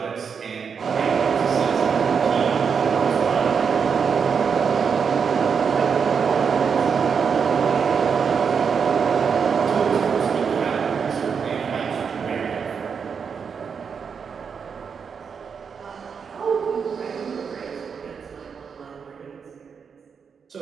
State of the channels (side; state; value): left; quieter; 6.3 dB